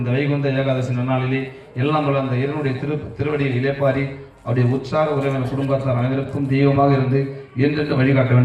இந்த வைகுந்த ஏகாதசி நன்னாளிலே எல்லாம் வல்ல அந்த இறைவனுடைய திருவடியில் இளைப்பாரி அவருடைய உற்சாக உறவினர் குடும்பத்தார் அனைவருக்கும் தெய்வமாக இருந்து என்றென்று வழிகாட்ட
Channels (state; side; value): identical; both; correlation 1.00